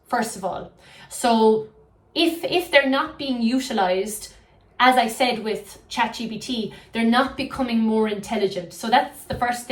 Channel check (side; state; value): both; identical; correlation 1.00